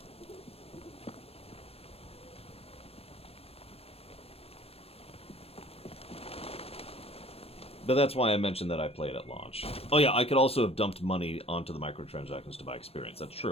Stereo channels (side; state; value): right; late; 0.29 ms